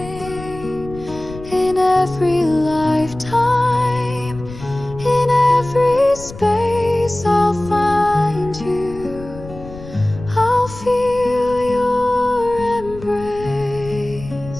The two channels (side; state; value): left; noise; rumble, 15 dB below the sound